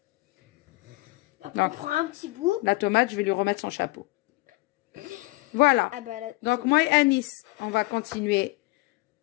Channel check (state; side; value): quieter; right; 22.4 dB